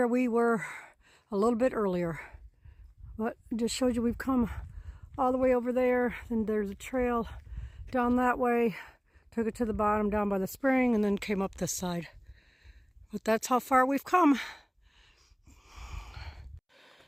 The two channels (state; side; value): identical; both; correlation 1.00